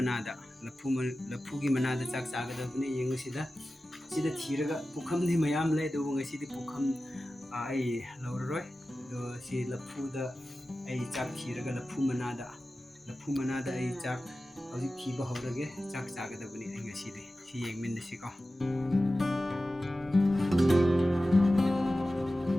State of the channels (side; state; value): both; normal; correlation 0.94